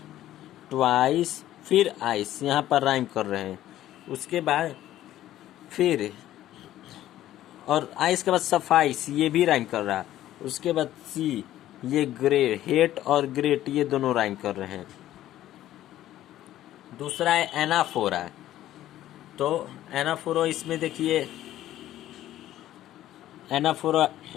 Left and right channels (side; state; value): right; quieter; 13.4 dB